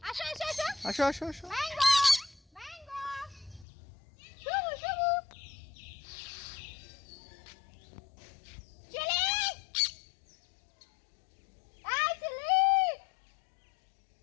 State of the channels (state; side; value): drops out; right; at 3.7 s